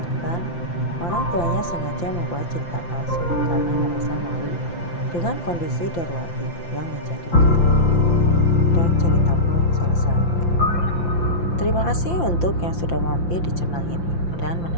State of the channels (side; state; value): right; late; 5.8 ms